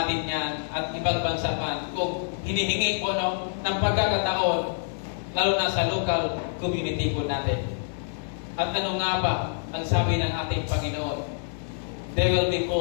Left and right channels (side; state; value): right; silent; 60 dB below the other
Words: yan at ibang bansa man kung hinihingi po ng pagkakataon, lalo na sa local community po natin. At ano nga ba ang sabi ng ating Panginoon? They will be